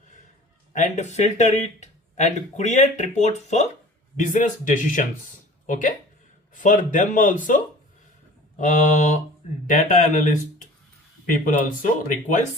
and filter it and create reports for business decisions. Okay, for them also data analyst people also require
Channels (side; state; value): both; normal; correlation 0.44